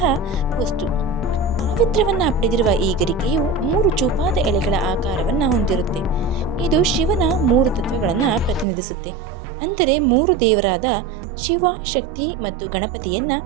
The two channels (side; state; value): left; drops out; at 8.7 s